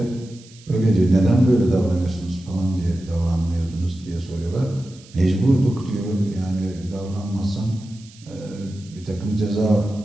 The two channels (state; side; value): noise; right; hiss, 24 dB below the sound